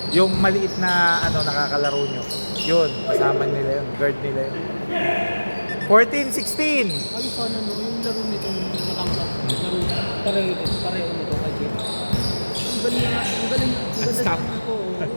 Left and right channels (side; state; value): both; inverted; correlation -1.00